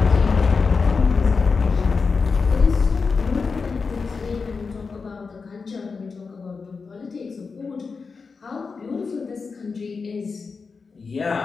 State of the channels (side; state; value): right; quieter; 4.8 dB